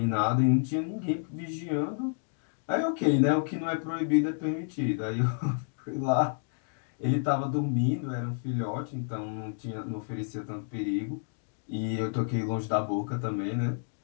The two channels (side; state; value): right; silent; digital silence